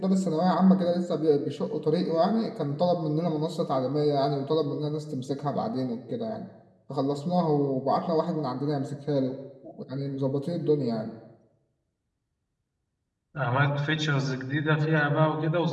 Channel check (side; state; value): both; identical; correlation 1.00